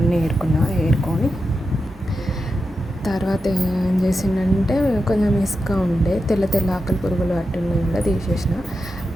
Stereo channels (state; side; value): normal; both; correlation 0.89